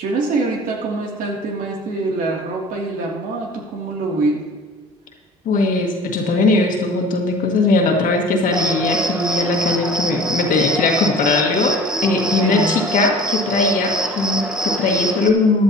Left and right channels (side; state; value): both; normal; correlation 0.43